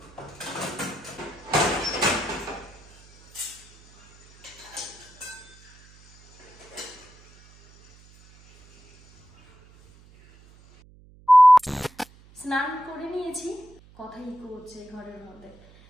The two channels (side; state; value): right; noise; hum, 26 dB below the sound